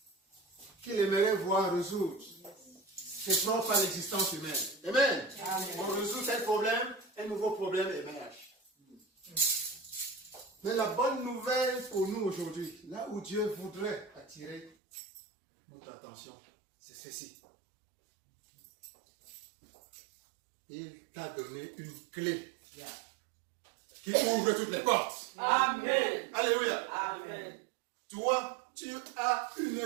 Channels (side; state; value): left; drops out; at 14.8 s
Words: qu'il aimerait voir résoudre. C'est propre à l'existence humaine. Amen. On résout tel problème, un nouveau problème émerge. Mais la bonne nouvelle pour nous aujourd'hui, là où Dieu voudrait attirer notre attention, c'est ceci. Il t'a donné une clé qui ouvre toutes les portes. Amen. Alléluia. Amen. Toi, tu as une